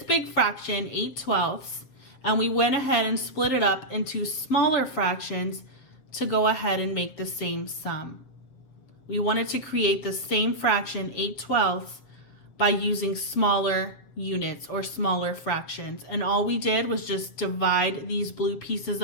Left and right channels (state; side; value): late; right; 7.4 ms